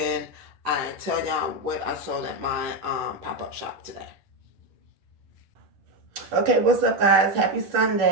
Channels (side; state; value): left; late; 10 ms